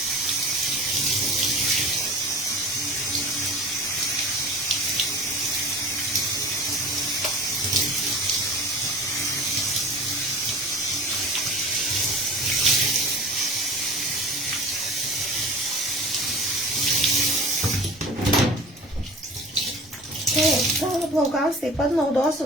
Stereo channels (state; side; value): normal; both; correlation 0.39